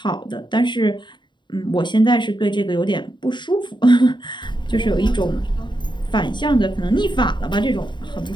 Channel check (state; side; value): late; right; 0.22 ms